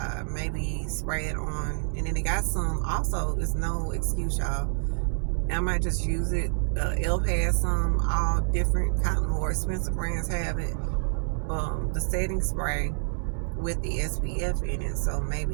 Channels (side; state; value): left; silent; digital silence